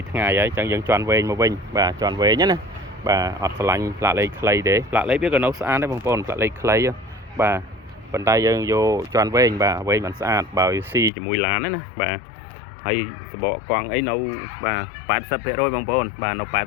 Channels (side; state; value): right; drops out; at 11.1 s